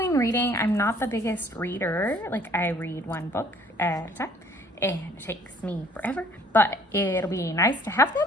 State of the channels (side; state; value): both; normal; correlation 0.57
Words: reading. I'm not the biggest reader. Like I read one book at a time and it takes me forever, but it'll be nice to have